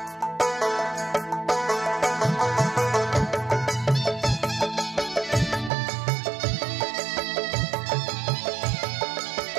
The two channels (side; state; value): left; drops out; at 5.7 s